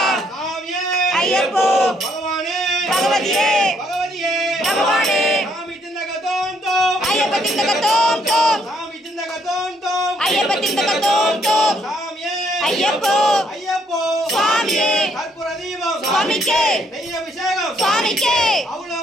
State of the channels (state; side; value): normal; both; correlation 0.69